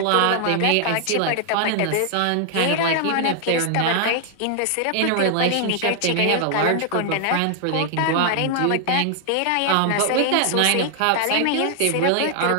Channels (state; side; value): different; both; correlation 0.00